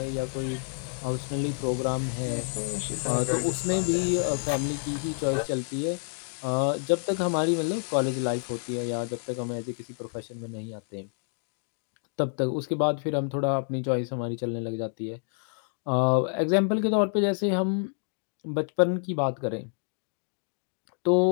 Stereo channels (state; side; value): silent; right; 59 dB below the other